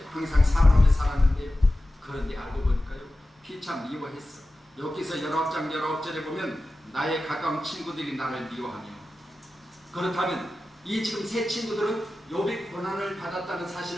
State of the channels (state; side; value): normal; both; correlation 0.94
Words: 항상 사랑하며 살았는데요. 그런데 알고 보니까요, 피차 미워했어. 여기서 19장 19절에 보면 나의 가까운 친구들이 나를 미워하며. 그렇다면 이 지금 세 친구들은 욥이 고난을 받았다는